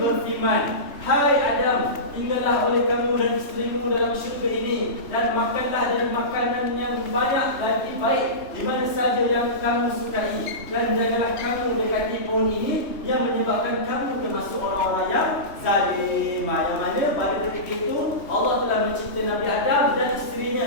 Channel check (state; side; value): late; right; 3.3 ms